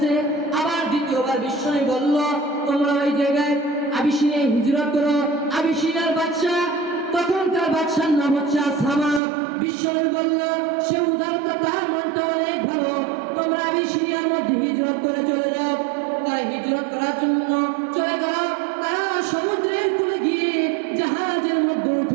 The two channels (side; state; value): left; drops out; at 9.2 s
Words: আবার দ্বিতীয়বার বিশ্বনবী বলল, তোমরা ওই জায়গায় আবিসিনিয়ায় হিজরত করো। আবিসিনিয়ার বাদশা, তখনকার বাদশার নাম হচ্ছে আসামা। বিশ্বনবী বলল, সে উদারতা, তার মনটা অনেক ভালো, তোমরা আবিসিনিয়ার মধ্যে হিজরত করে চলে যাও। তারা হিজরত করার জন্য চলে গেল। তারা সমুদ্রের কূলে গিয়ে জাহাজের মধ্যে